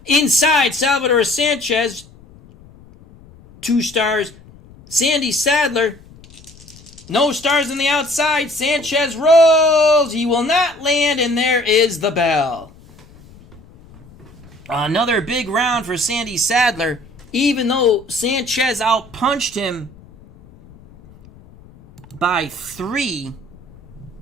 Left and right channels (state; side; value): noise; left; rumble, 24 dB below the sound